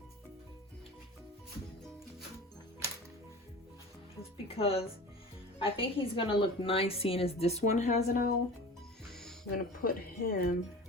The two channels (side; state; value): both; normal; correlation 0.36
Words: Just because I think he's gonna look nice, seeing as this one has an owl. I'm gonna put him